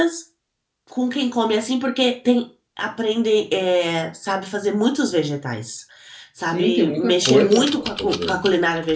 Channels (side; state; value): both; identical; correlation 1.00